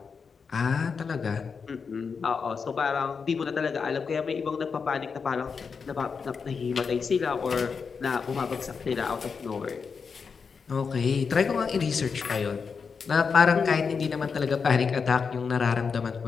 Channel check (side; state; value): right; quieter; 5.6 dB